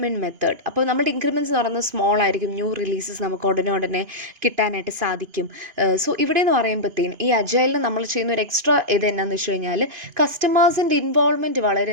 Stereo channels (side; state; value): left; late; 2.9 ms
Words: method. അപ്പോൾ നമ്മുടെ ഇൻക്രിമെൻറ്റ്സ് എന്ന് പറയുന്നത് സ്മോൾ ആയിരിക്കും. ന്യൂ റിലീസസ് നമുക്ക് ഉടനെ കിട്ടാനായിട്ട് സാധിക്കും. സോ ഇവിടെ എന്ന് പറയുമ്പോഴത്തേനും ഈ അജൈലിൽ നമ്മൾ ചെയ്യുന്ന ഒരു എക്സ്ട്രാ ഇത് എന്നാന്ന് വെച്ച് കഴിഞ്ഞാൽ കസ്റ്റമേഴ്സിൻ്റെ ഇൻവോൾവ്മെൻറ്റ്